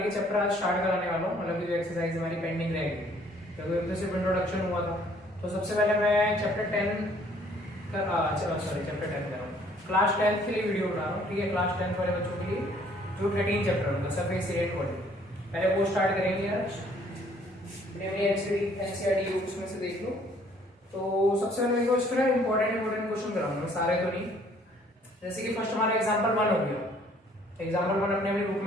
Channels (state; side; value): normal; both; correlation 0.60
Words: के चैप्टर आज स्टार्ट कराने वाला हूँ, मतलब जो एक्सरसाइज हमारी पेंडिंग रहेगी क्योंकि अब तो सिर्फ इंट्रोडक्शन हुआ था। तो सबसे पहले मैं चैप्टर 10 चैप्टर 10 कर रहा हूँ, क्लास 10 के लिए वीडियो बना रहा हूँ। ठीक है, क्लास 10 वाले बच्चों के लिए जो 13 चैप्टर होगा सरफेस एरिया इक्वालिटी, पहले वो स्टार्ट करेंगे यार। एनसीईआरटी बुक्स में से देख लो। तो सबसे पहले देखो इसमें इंपॉर्टेंट क्वेश्चन कराऊंगा, सारे तो नहीं। जैसे कि फर्स्ट हमारा एग्जांपल 1 हो गया, एग्जांपल 1 अपने बुक